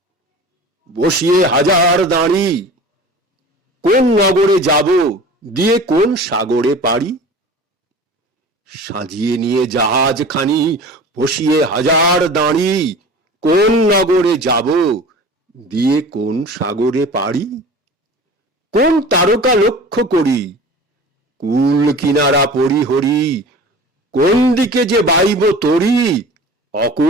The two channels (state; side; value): normal; both; correlation 0.39